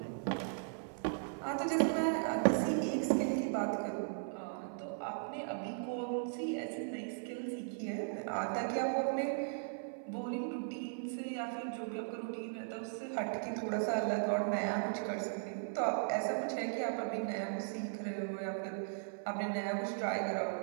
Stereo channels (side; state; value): left; silent; 53 dB below the other